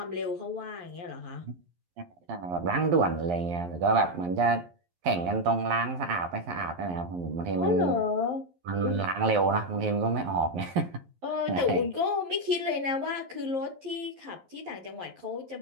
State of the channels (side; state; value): left; late; 11 ms